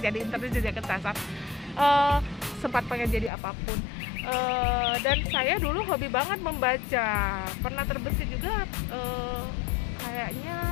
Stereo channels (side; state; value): right; drops out; at 3.3 s